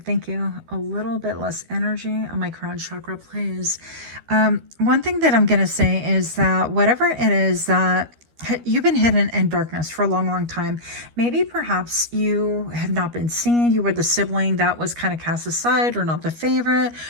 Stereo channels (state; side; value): late; left; 13 ms